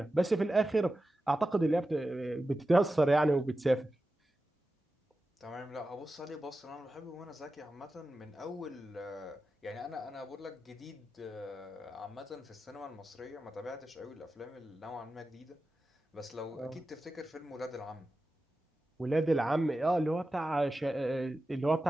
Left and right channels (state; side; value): normal; both; correlation 0.93